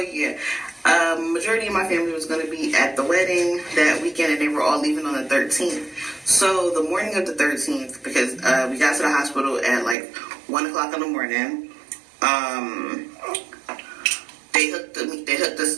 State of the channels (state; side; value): drops out; left; at 10.0 s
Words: majority of my family was going to be at the wedding that weekend, and they were all leaving on the 13th. So the morning of the 13th, because we got to the hospital at like 1 o'clock in the morning, they